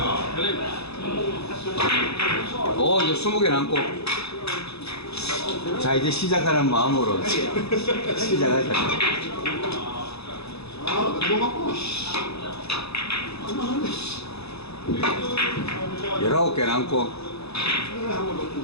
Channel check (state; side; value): late; right; 0.79 ms